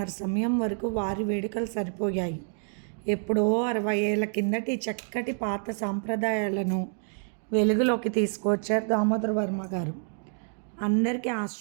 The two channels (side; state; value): left; silent; 55 dB below the other